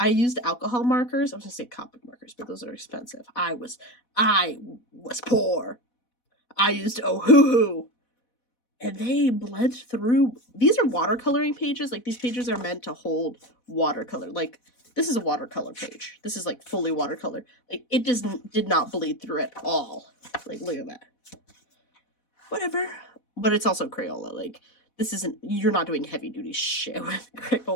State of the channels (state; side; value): late; right; 4.1 ms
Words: used alcohol markers. I was gonna say Copic markers, but those are expensive. I was poor. I used Ohuhu. And they bled through. These are watercoloring pages. Like, these pages are meant to hold watercolor. Like, this is a watercolor page. This is, like, fully watercolor. Like, it did not bleed through at all. Like, look at that. Whatever. But it's also Crayola. Like, this isn't, you're not doing heavy duty shit with